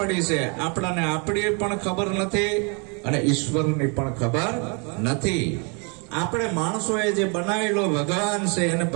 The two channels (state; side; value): quieter; left; 34.6 dB